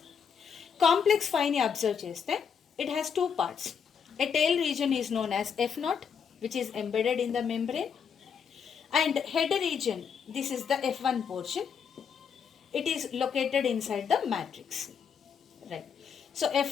Complex 5 ని observe చేస్తే it has two parts. A tail region is known as F0, which is embedded in the membrane, and head region, this is the F1 portion. It is located inside the matrix, right? So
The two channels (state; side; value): quieter; right; 6.9 dB